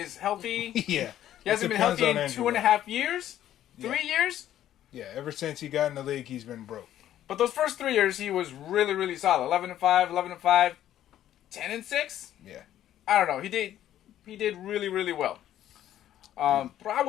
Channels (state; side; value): quieter; right; 11.9 dB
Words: healthy. Yeah. He hasn't been healthy in 2.5 years? 3 years? Yeah, ever since he got in the league, he's been broke. But those first 3 years, he was really, really solid. 11-5, 11-5, 10-6. Yeah. I don't know. He did really, really well. But I